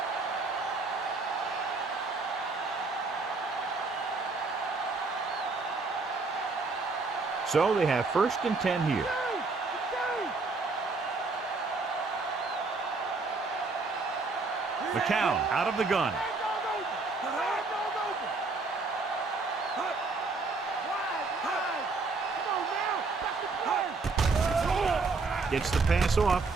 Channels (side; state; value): left; quieter; 3.9 dB